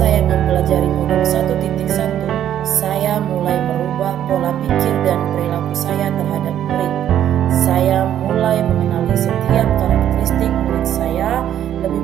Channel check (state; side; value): quieter; left; 10.7 dB